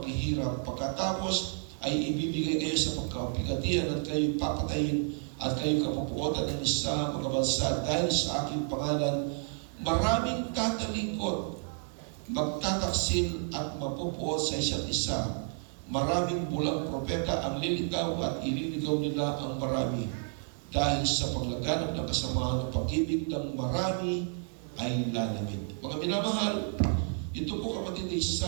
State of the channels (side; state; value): left; silent; 57 dB below the other